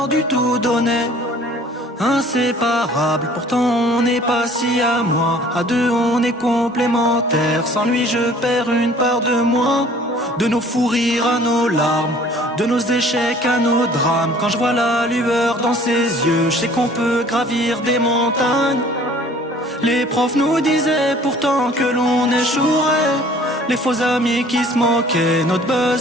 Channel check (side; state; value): both; normal; correlation 0.52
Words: du tout donné. Inséparables, pourtant on n'est pas si à moi. À deux on est complémentaires. Sans lui je perds une part de moi. De nos fous rires à nos larmes, de nos échecs à nos drames. Quand je vois la lueur dans ses yeux, je sais qu'on peut gravir des montagnes. Les profs nous disaient pourtant que l'on échouerait. Les faux amis qui se moquaient, notre